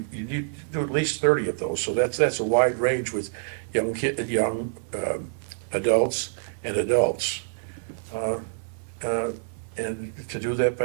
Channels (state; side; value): silent; left; 59 dB below the other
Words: need to do at least 30 of those, so that's a wide range with young adults and adults. And to do that